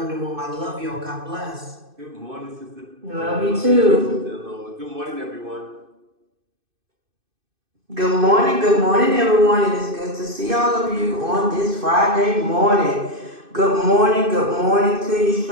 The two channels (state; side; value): late; left; 2.6 ms